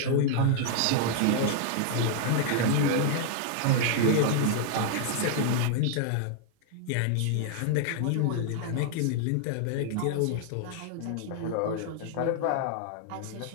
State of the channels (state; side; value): different; both; correlation 0.00